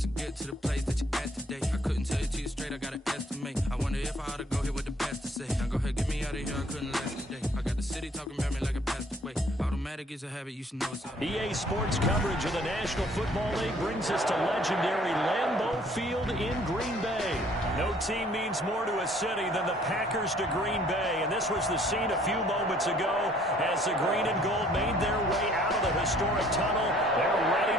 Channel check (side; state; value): both; normal; correlation 0.59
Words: to get to the place that you at today. I couldn't tell it to you straight, I gotta estimate. I wonder if I ought to go here with the pastor say. Now go ahead, get me out of here, I couldn't last today. I got the city talking about me like a passed away. Automatic is a habit, you should know it's up. EA Sports coverage of the National Football League brings us to legendary Lambeau Field in Green Bay. No team means more to a city than the Packers to Green Bay, and this was the scene a few moments ago as the green and gold made their way out of the historic tunnel. They're ready